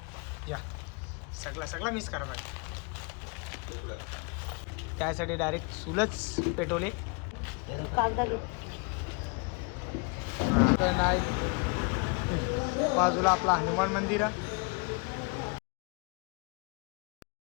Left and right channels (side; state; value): right; quieter; 32.0 dB